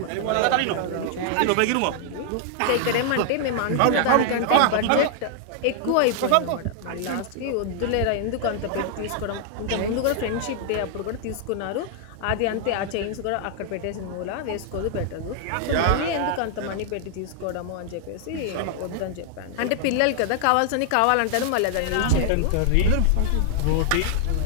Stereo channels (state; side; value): different; both; correlation 0.00